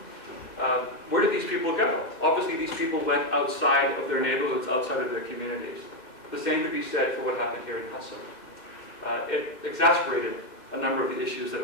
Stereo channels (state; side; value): late; right; 2.1 ms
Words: Where did these people go? Obviously, these people went outside of their neighborhoods, outside of their communities. The same could be said for what happened here in Hudson. It exacerbated a number of the issues that